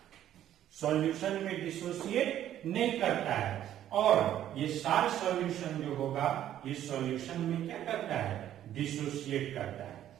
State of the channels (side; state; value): left; quieter; 11.6 dB